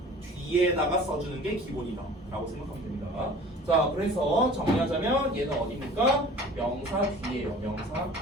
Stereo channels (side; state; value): both; normal; correlation 0.45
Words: 뒤에다가 써주는 게 기본이다 라고 생각하면 됩니다. 자, 그래서 정리하자면 얘는 어디입니까? 명사 뒤에요. 명사 뒤.